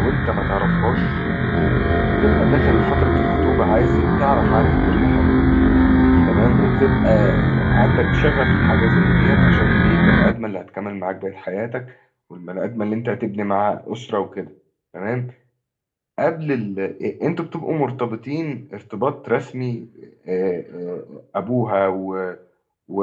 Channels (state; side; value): identical; both; correlation 1.00